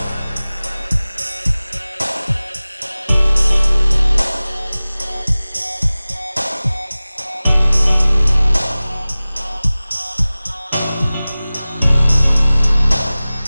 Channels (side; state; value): both; inverted; correlation -0.98